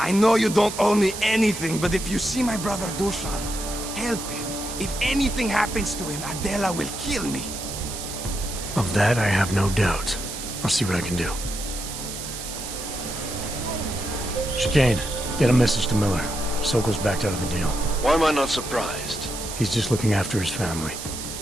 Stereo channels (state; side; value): noise; right; hiss, 8 dB below the sound